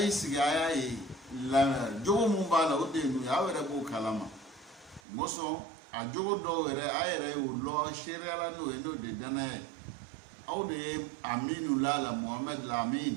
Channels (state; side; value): drops out; left; at 5.0 s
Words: siga aya yi la jogo mu bala o de nu ya were bo kalama moso a jogo do were ayere o lo sheriala no e no de dana aw de aminu la Muhammad